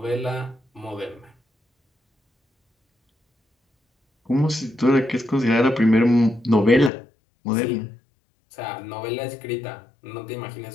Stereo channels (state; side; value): drops out; right; at 6.9 s